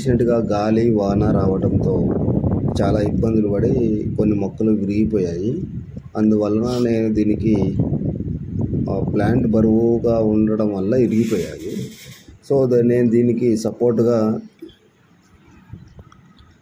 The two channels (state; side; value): identical; both; correlation 1.00